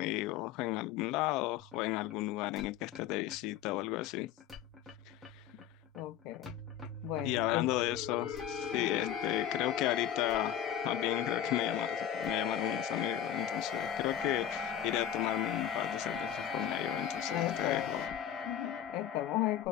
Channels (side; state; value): right; quieter; 10.4 dB